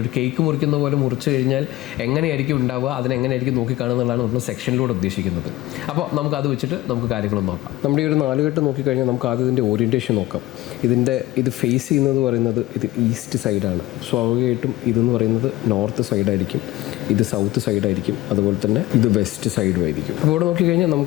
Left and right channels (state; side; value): quieter; right; 17.0 dB